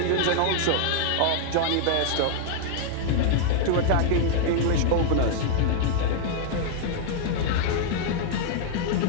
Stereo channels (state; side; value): different; both; correlation -0.01